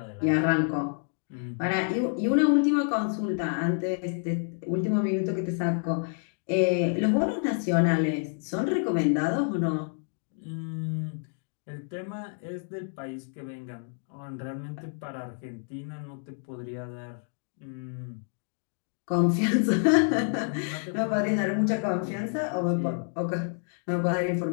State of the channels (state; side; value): silent; right; 58 dB below the other